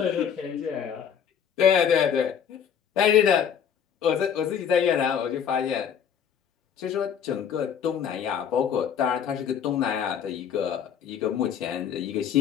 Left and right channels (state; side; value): quieter; right; 8.1 dB